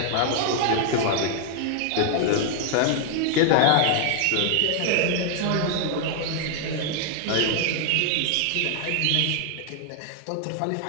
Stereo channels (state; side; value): different; both; correlation 0.00